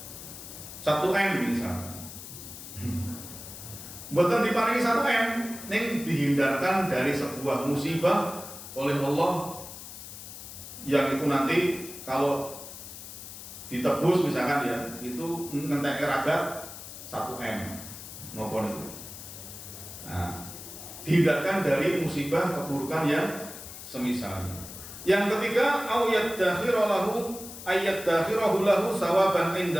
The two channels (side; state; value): left; noise; hiss, 12 dB below the sound